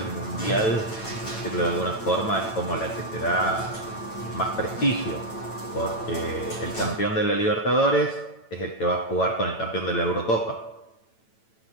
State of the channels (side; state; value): right; late; 9.0 ms